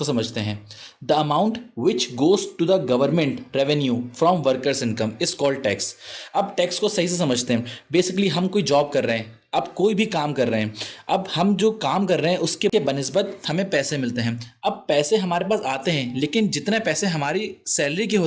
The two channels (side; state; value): both; identical; correlation 1.00